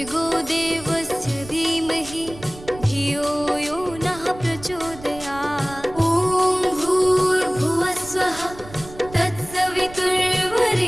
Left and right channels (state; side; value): noise; right; rumble, 17 dB below the sound